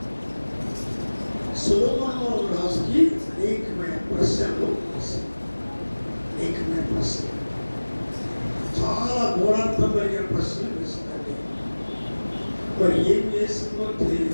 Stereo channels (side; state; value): both; inverted; correlation -1.00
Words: సొలొమోను రాజుకి అనేకమైన ప్రశ్నలు, చాలా గూఢార్థం కలిగిన ప్రశ్నలు వేసిందండి. మరి ఏం చేసిందో తెలియదు,